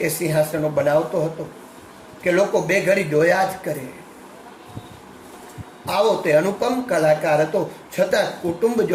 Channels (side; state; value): both; identical; correlation 1.00